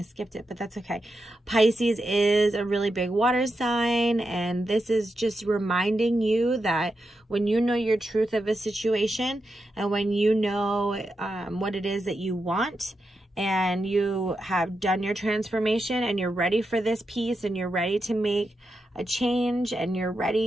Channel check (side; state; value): both; normal; correlation 0.87